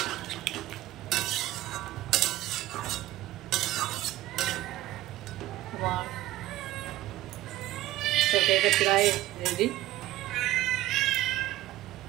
আমার তরকারিটা প্রায় রেডি।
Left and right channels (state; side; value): quieter; left; 15.8 dB